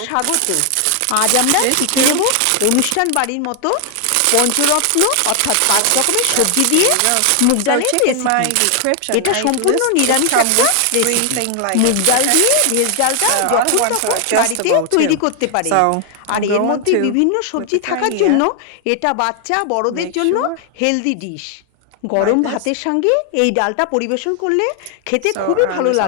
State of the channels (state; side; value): different; both; correlation 0.00